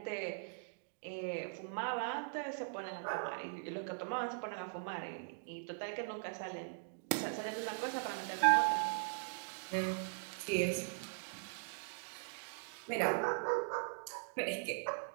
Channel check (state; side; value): silent; left; digital silence